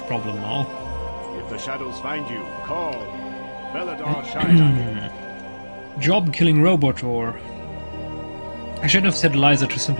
problem now. If the shadows find you, call. Bellador shines on you. Job killing robot or... I shouldn't have said Eliza to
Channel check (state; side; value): inverted; both; correlation -1.00